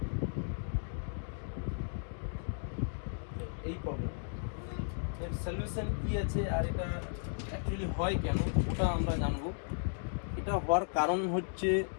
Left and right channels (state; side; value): silent; right; digital silence